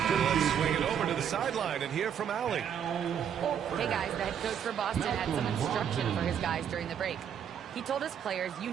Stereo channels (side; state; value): left; quieter; 8.6 dB